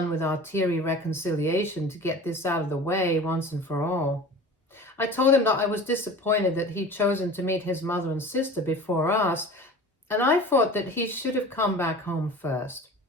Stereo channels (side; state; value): both; normal; correlation 0.39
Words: with our teary reconciliation to get this out of the way once and for all. I told him that I was disappointed that he'd chosen to meet his mother and sister before us, and I thought that he should have come back home first.